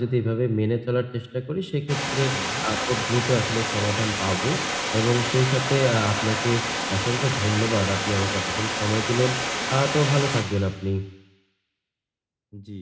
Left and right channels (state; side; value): identical; both; correlation 1.00